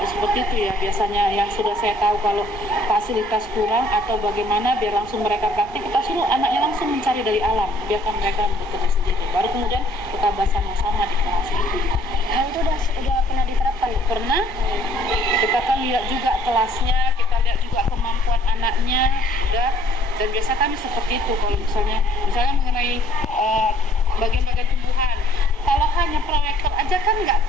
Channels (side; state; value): both; normal; correlation 0.60